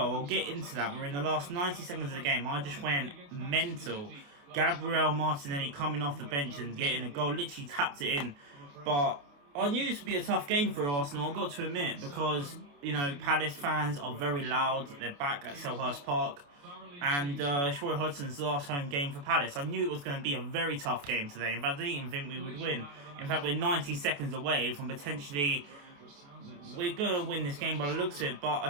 I'll get into that. We're in the last 90 seconds of the game. I just went mental. Gabriel Martinelli coming off the bench and getting a goal. Literally tapped it in. But I knew this would be a tough game for Arsenal, I've got to admit, because, Palace fans are very loud. They're back at Selhurst Park. And it's Roy Hodgson's last home game for Palace. I knew it was going to be a very tough game today. In fact, I didn't even think we would win. In fact, we're 90 seconds away from potentially... We're going to win this game by the looks of it, but I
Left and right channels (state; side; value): late; left; 28 ms